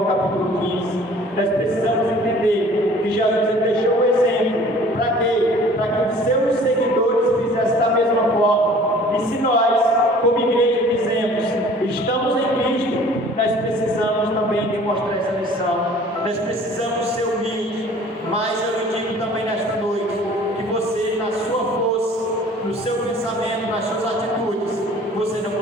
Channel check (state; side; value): normal; both; correlation 0.50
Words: capítulo 15, nós precisamos entender que Jesus ele deixou o exemplo. Para quê? Para que os seus seguidores fizessem da mesma forma. E se nós, como igreja, dizemos, estamos em Cristo, nós precisamos também demonstrar essa lição. Nós precisamos ser humildes. Mas eu lhe digo também nesta noite, que você, na sua força, no seu pensamento, nas suas atitudes, você não